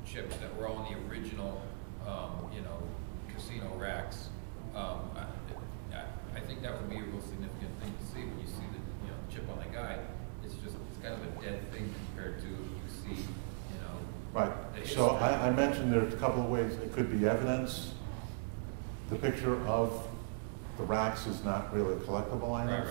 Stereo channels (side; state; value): left; silent; digital silence